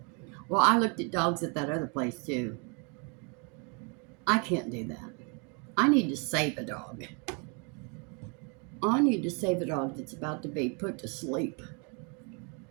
Well, I looked at dogs at that other place too. I can't do that. I need to save a dog. I need to save a dog that's about to be put to sleep.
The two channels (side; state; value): left; quieter; 35.1 dB